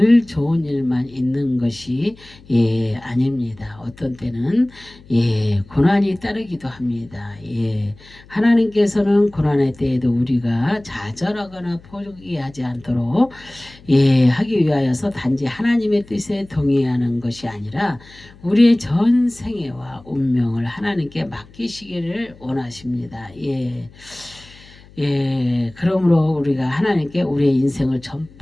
좋은 일만 있는 것이 아닙니다. 어떤 때는 고난이 따르기도 합니다. 하나님께서는 고난의 때에도 우리가 좌절하거나 포기하지 않도록 하기 위하여서 단지 하나님의 뜻에 동의하는 것이 아니라 우리의 전 생애와 운명을 하나님께 맡기시기를 원하십니다. 그러므로 우리가 하나님께 우리의 인생을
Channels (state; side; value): noise; left; hum, 24 dB below the sound